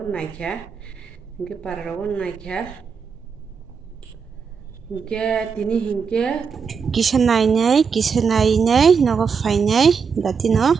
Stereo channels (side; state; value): left; quieter; 5.9 dB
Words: naikha. Hingke paraga naikha. Hingke tini hingke kisa nainai nogo fainai datino.